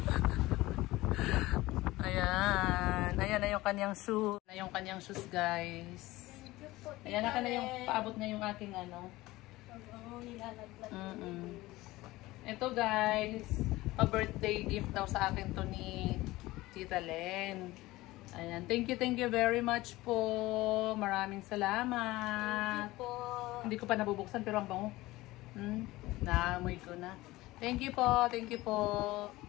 Ayan. Ayan na yung kanyang shoes. Na yung kanyang shoes, guys. Ayan na ka na yung paabot na yung aking ano. Nilalaglag. Ito, guys. Pa-birthday gift daw sa akin to ni Tita Len. Ayan. Thank you very much po. Maraming salamat. Thank you po. Hindi ko pa nabubuksan pero ang bango. Naamoy ko na. Thank you po.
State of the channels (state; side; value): quieter; right; 18.7 dB